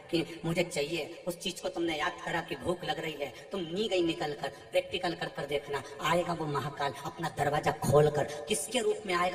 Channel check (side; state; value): both; identical; correlation 1.00